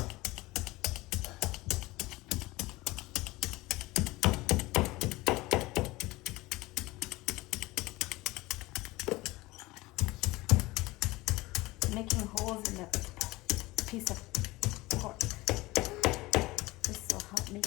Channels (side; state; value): right; quieter; 20.4 dB